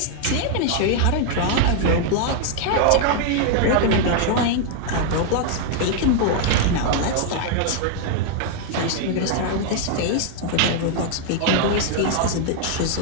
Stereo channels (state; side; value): different; both; correlation 0.00